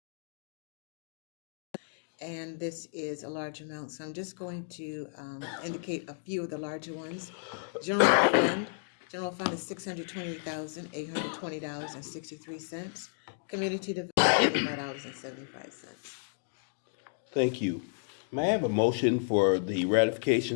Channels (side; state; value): right; silent; digital silence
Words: And this is a large amount, so I'm just going to indicate a few of the larger ones. General fund is $628,820.63. Community development, $5.75. Thank you. May I have a motion for the